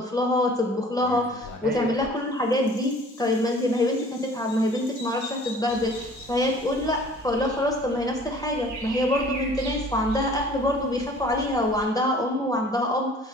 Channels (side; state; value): both; normal; correlation 0.50